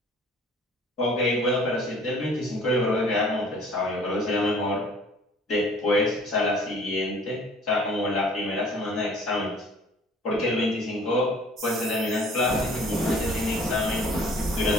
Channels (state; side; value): normal; both; correlation 0.52